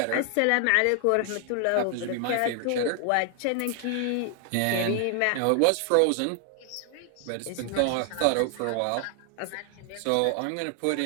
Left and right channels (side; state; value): both; different; correlation 0.00